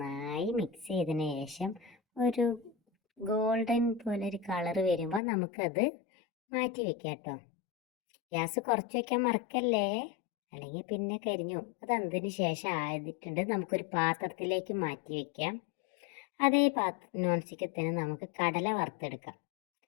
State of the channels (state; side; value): drops out; right; at 5.2 s